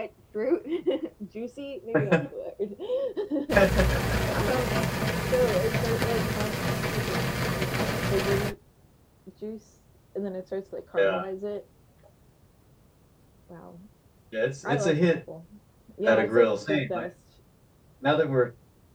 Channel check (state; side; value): identical; both; correlation 1.00